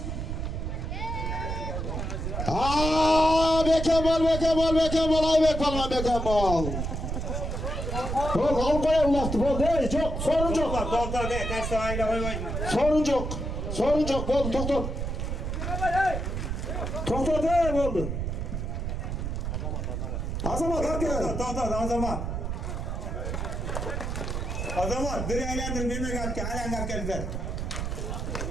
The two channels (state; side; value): noise; right; rumble, 3 dB below the sound